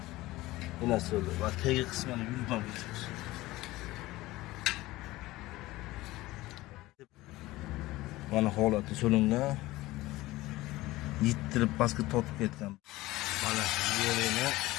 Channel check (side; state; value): right; quieter; 18.5 dB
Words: yana solib va tegi qismini yuvib o'tamiz. Mana holati solingan. Yittirib pastga tortib ketgan. Mana yerini